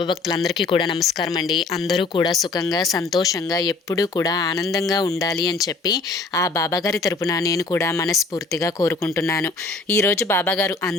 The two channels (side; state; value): right; quieter; 3.7 dB